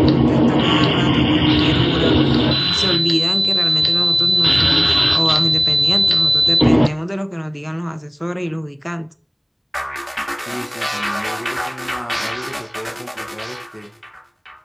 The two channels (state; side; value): identical; both; correlation 1.00